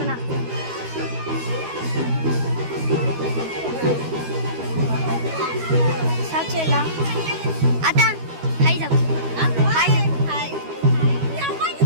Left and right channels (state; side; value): late; left; 12 ms